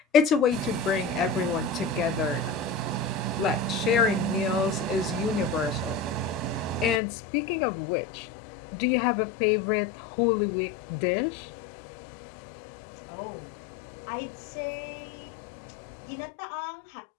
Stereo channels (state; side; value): drops out; right; at 7.0 s